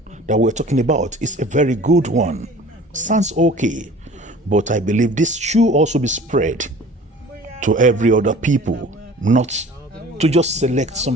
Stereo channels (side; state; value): both; normal; correlation 0.45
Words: that we're talking about is a very good one. Sounds okay, but I believe this should also be spread to every other people, not to just select